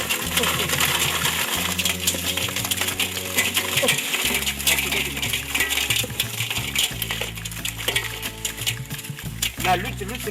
La lutte, je vous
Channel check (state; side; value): identical; both; correlation 1.00